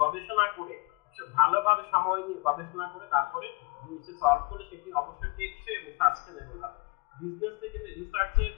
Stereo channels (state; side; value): quieter; right; 28.1 dB